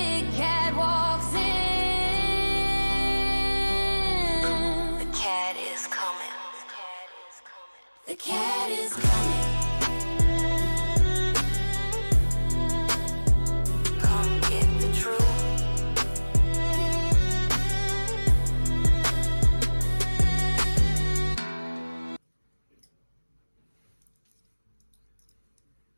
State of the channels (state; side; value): inverted; both; correlation -1.00